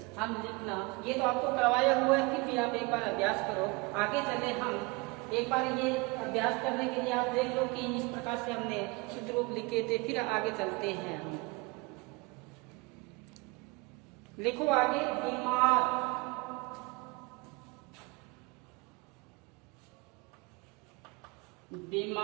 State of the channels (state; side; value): quieter; left; 26.1 dB